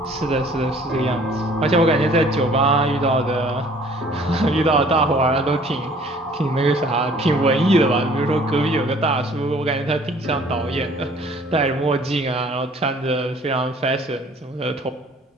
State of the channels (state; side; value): normal; both; correlation 0.54